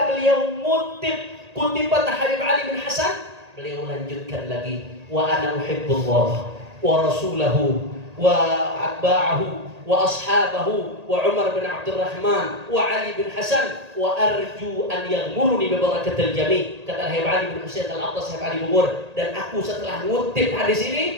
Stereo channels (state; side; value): late; left; 1.8 ms